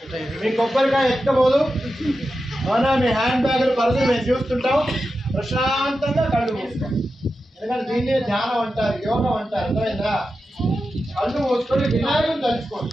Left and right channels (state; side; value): normal; both; correlation 0.91